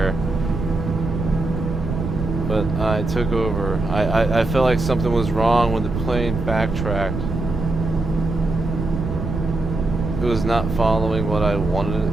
But I took over. I felt like something was wrong when the plane backtracked. It was not following what I wanted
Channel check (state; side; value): noise; right; rumble, 4 dB below the sound